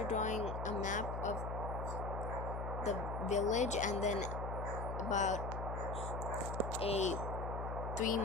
drawing a map of the village, and then about a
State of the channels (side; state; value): left; noise; hum, 4 dB below the sound